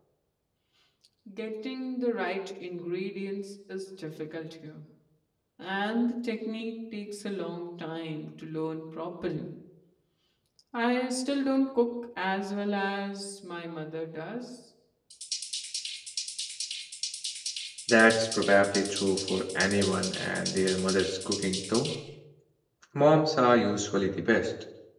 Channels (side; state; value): both; identical; correlation 1.00